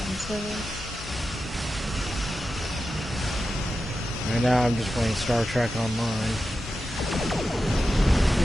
card. Right now, I'm just playing Star Trek Online.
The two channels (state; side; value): normal; both; correlation 0.91